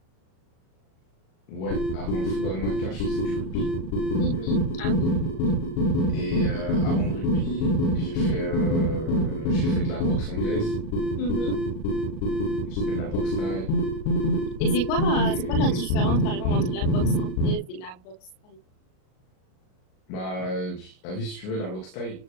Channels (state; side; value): late; right; 38 ms